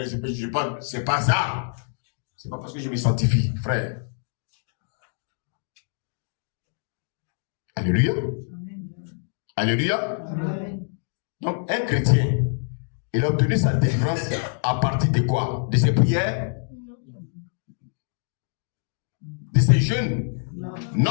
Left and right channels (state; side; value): silent; right; digital silence